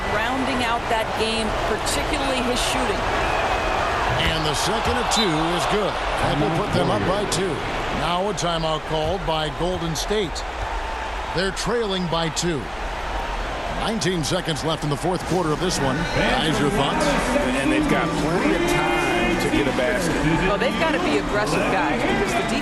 rounding out that game, particularly his shooting. And the second of 2 is good. That will put them up by 2. Now a timeout called by Golden State. They're trailing by 2. 19 seconds left in the fourth quarter of this one. Guys, your thoughts? And they've got plenty of time to get a basket. Well, they've got to be aggressive, guys, because the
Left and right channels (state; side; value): identical; both; correlation 1.00